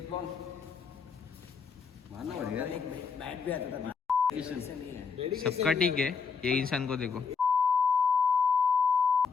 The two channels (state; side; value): quieter; right; 5.6 dB